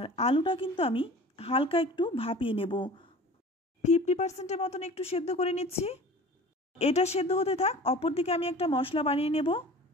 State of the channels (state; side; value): normal; both; correlation 0.41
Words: আলুটা কিন্তু আমি হালকা একটু ভাপিয়ে নেব, 50% মতন একটু সেদ্ধ করে নিচ্ছি। এটা সেদ্ধ হতে থাক, অপরদিকে আমি একটা মশলা বানিয়ে নেব।